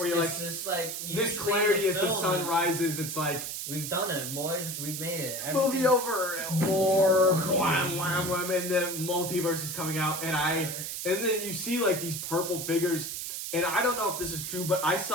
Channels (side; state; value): right; noise; hiss, 5 dB below the sound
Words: you're like, just like this clarity as the sun rises. It's like we've done it, boys. We've made it. Movie over. More wham, wham, wham, and the multiverse is coming out, and then you see like these purple figures, and I don't know if this is true, but I